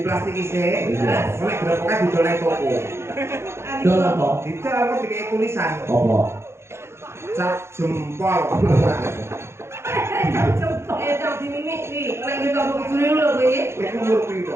plastik isi. Iya. Oleh gerobaknya didoleng toko. Dol apa? Didol kok dikei tulisan. Apa? Cap jempol. Tak dimimik iki. Nek kita kok juri lho kowe. Kowe umur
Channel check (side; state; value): left; late; 0.13 ms